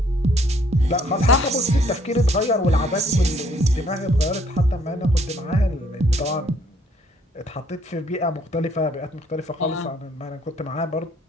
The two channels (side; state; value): both; normal; correlation 0.64